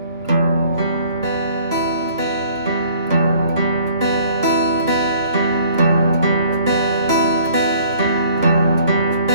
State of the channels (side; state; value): both; inverted; correlation -0.56